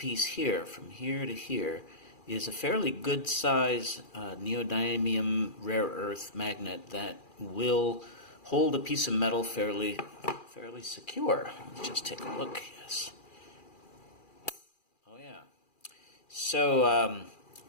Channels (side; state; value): right; late; 2.4 ms